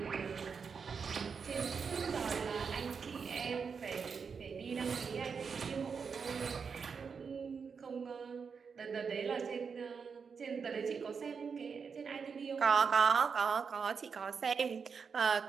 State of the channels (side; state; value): left; quieter; 5.8 dB